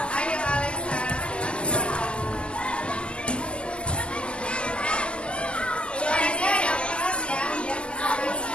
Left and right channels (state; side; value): late; right; 0.052 ms